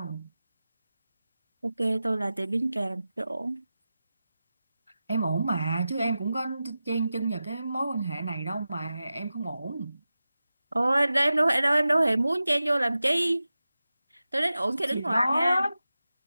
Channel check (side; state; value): both; inverted; correlation -0.94